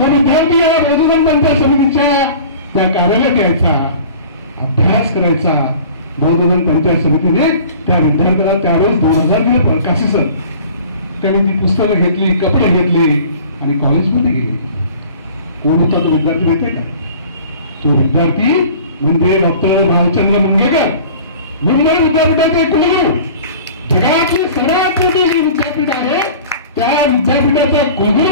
विद्यार्थी या बौद्धधन पंचायत समितीच्या त्या कार्यालयात यायचा, अभ्यास करायचा. बौद्धधन पंचायत समितीने त्या विद्यार्थ्याला त्यावेळेस 2000 दिले प्रकाशी सर. त्याने ती पुस्तकं घेतली, कपडे घेतले आणि कॉलेजमध्ये गेले. कोण होता तो विद्यार्थी माहितीये का? तो विद्यार्थी म्हणजे डॉक्टर भालचंद्र मुंगेकर, मुंबई विद्यापीठाचे कुलगुरू. जगातले सर्वात मोठे विद्यापीठ आहे, त्या विद्यापीठाचा कुलगुरू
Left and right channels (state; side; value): inverted; both; correlation -0.44